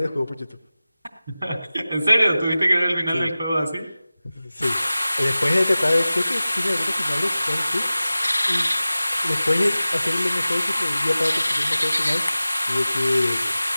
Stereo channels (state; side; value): inverted; both; correlation -0.97